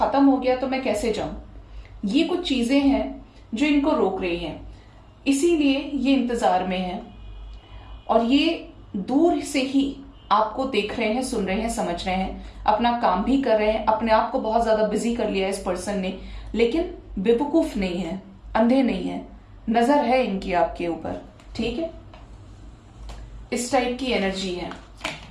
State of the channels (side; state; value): both; identical; correlation 1.00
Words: हो गया तो मैं कैसे जाऊं। ये कुछ चीजें हैं जो इनको रोक रही हैं, इसीलिए ये इंतजार में है और ये दूर से ही आपको देख रहे हैं, सुन रहे हैं, समझ रहे हैं, अपना काम भी कर रहे हैं। अपने आप को बहुत ज्यादा बिजी कर लिया है इस पर्सन ने, लेकिन बेवकूफ नहीं है, अंधे नहीं है, नजर है इनकी आपके ऊपर। ठीक है, इस टाइप की एनर्जी है।